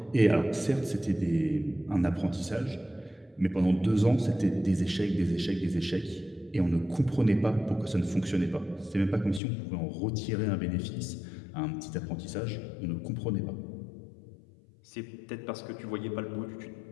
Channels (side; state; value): right; drops out; at 9.4 s